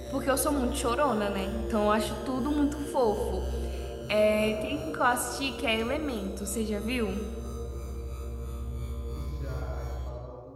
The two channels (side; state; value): both; identical; correlation 1.00